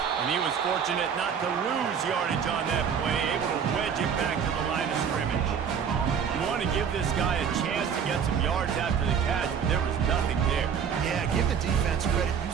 he was fortunate not to lose yardage on that play, able to wedge it back to the line of scrimmage. You want to give this guy a chance to get some yards after the catch, but there was nothing there. Yeah, give the defense credit. You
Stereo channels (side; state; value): left; quieter; 7.3 dB